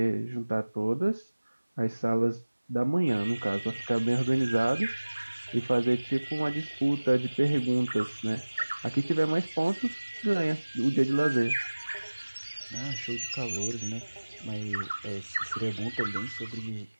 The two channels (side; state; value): both; inverted; correlation -1.00